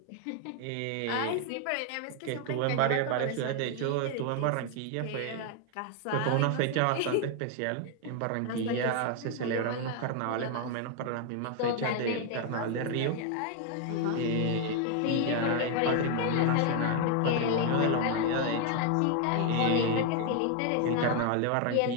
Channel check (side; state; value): both; different; correlation 0.00